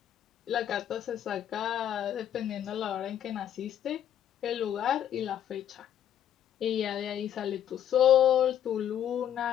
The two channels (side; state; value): right; quieter; 10.2 dB